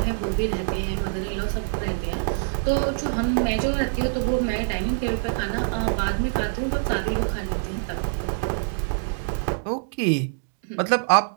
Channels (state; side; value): silent; left; digital silence